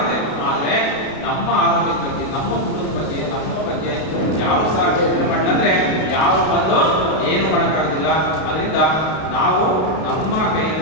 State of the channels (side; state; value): right; late; 32 ms